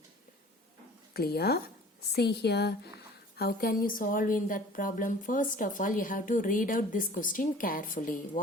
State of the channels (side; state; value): both; normal; correlation 0.47